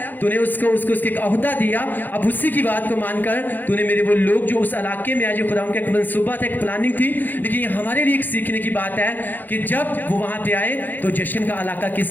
तूने उसको उसको उसके एक ओहदा दिया, अब उसी की बात को मानकर तूने मेरे वो लोग जो उस इलाके में आज खुदा उनका एक मंसूबा था, एक प्लानिंग थी, लेकिन ये हमारे लिए एक सीखने की बात है कि जब वो वहां पे आए तो जश्न का इलाका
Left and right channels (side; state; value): right; late; 0.087 ms